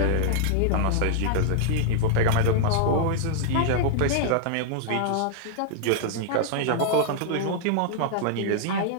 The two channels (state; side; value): different; both; correlation -0.01